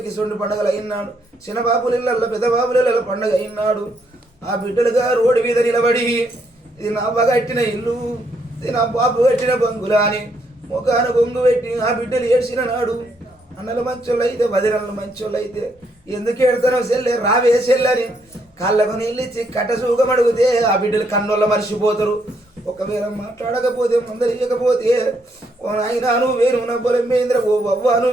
కిసొండి పండుగలు అయినాడు, చిన్న బాబుల ఇళ్ళల్లో పెద్ద బాబుల ఇళ్ళ పండుగ అయినాడు. ఆ బిడ్డలుగా రోడ్డు మీద నిలబడి ఇది నా అవ్వ కట్టిన ఇల్లు, ఇది నా బాబు కట్టిన బంగులా అని ముఖాన బొంగు పెట్టి ఆ బిడ్డలు ఏడ్చిన నాడు. అన్నలు మంచోళ్ళు అయితే వదినలు మంచోళ్ళు అయితే ఎందుకు ఏడతానో సెల్లే రావే సెల్లని కాళ్ళకు నీళ్ళిచ్చి కట్ట సూగం అడిగితే ఆ బిడ్డలు కన్నోళ్ళ మర్చిపోతారు. ఒకవేళ మాట్లాడకపోతే మందలియకపోతే ఓ నాయన నువ్వు వేరున బలమైందిరా, ఓ అవ్వ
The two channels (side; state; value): both; normal; correlation 0.74